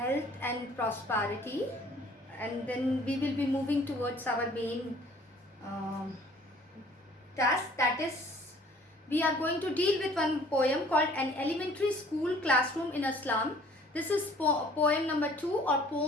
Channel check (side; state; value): both; normal; correlation 0.54